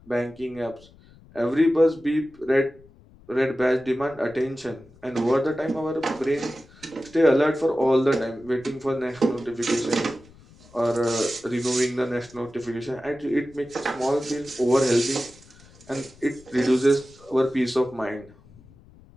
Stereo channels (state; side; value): noise; left; rumble, 25 dB below the sound